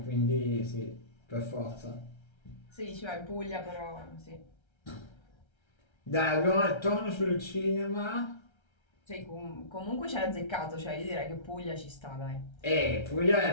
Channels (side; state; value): right; late; 1.3 ms